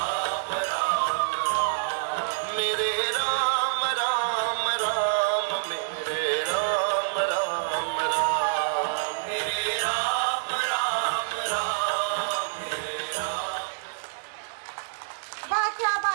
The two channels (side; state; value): left; silent; digital silence